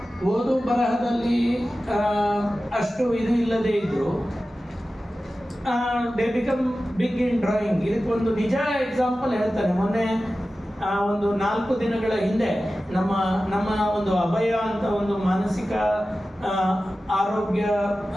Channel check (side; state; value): both; normal; correlation 0.95